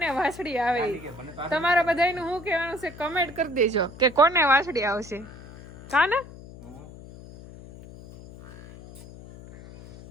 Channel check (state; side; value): noise; left; hum, 17 dB below the sound